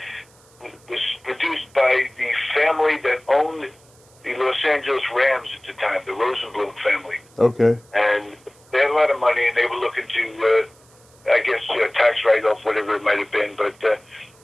produced by the family that owned the Los Angeles Rams at the time, the Rosenblum family. Okay. And they had a lot of money, and they were looking to, tax write-off, whatever it might have been. But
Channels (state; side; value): noise; right; hiss, 29 dB below the sound